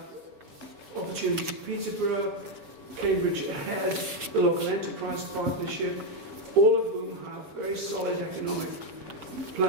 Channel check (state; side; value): late; left; 6.9 ms